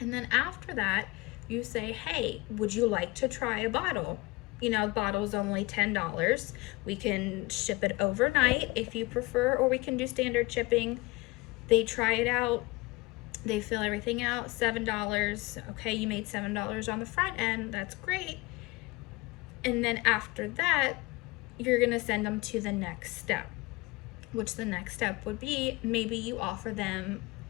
then after that, you say, hey, would you like to try a bottle? You know, the bottle's only $10. We can ship it overnight if you prefer, or we can do standard shipping. They try it out, they fill everything out, $7. Okay, you made $7 on the front end, that's great. And then after that, you're gonna send them to the next step, which the next step would be maybe you offer them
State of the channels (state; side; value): quieter; right; 22.9 dB